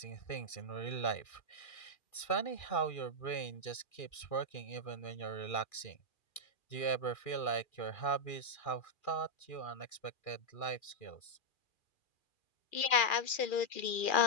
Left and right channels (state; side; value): late; right; 2.4 ms